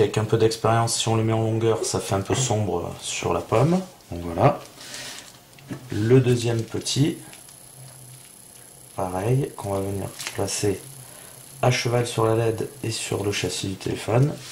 un peu d'expérience, si on les met en longueur, ça fait un peu sombre sur la pomme. Donc voilà. Le deuxième petit, pareil, qu'on va venir placer à cheval sur la LED et sur le châssis du téléphone.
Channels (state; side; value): identical; both; correlation 1.00